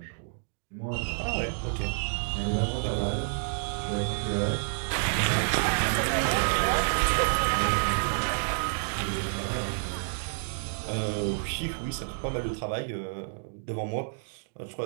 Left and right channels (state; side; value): silent; left; digital silence